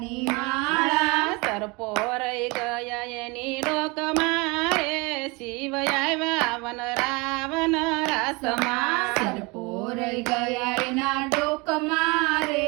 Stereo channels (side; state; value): left; quieter; 27.1 dB